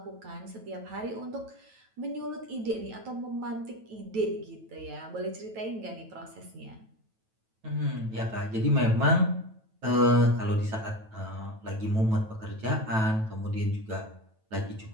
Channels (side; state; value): left; late; 9.1 ms